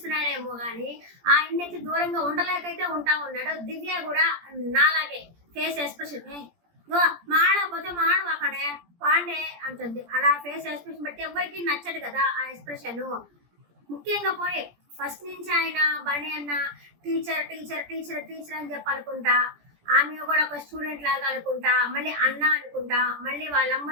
కానీ ఆయనైతే దూరంగా ఉండలేకైతే ఉంటా ఉన్నాడు. దివ్య కూడా నాలాగే ఫేస్ ఎక్స్ప్రెషన్ మాడకపోతే మాడవాకడే పాండే అంటుంది. అలా ఫేస్ ఎక్స్ప్రెషన్ బట్టి ఎవరికి నచ్చదు కదా ఆ ఎక్స్ప్రెషన్. ముఖ్యంగా పోయి ఫస్ట్ నుంచి ఆయన బర్ణి అన్న టీచర్ టీచర్ టీచర్ టీచర్ అని చెప్పాలనుకుంటా, ఆమె కూడా ఒక స్టూడెంట్ లాగా అనుకుంటా, మళ్ళీ అన్న అనుకుంటా, మళ్ళీ వాళ్ళమ్మ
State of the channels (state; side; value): late; left; 17 ms